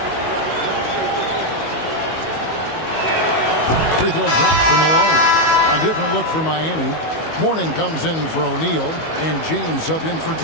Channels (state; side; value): late; right; 19 ms